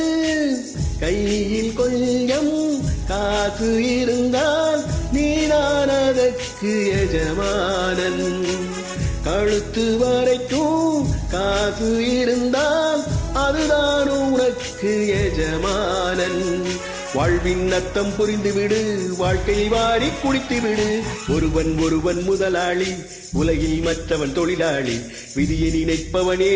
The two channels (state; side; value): identical; both; correlation 1.00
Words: கையில் கொஞ்சம் காசு இருந்தால் நீதான் அதற்கு எஜமானன். கழுத்து வரைக்கும் காசு இருந்தால் அதுதான் உனக்கு எஜமானன். வாழ்வின் அர்த்தம் புரிந்துவிடு, வாழ்க்கையை வாரி குடித்துவிடு. ஒருவன் முதலாளி, உலகில் மற்றவன் தொழிலாளி. விதியை நினைப்பவனே